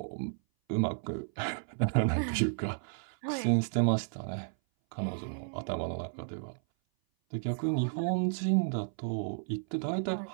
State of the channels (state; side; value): silent; left; 56 dB below the other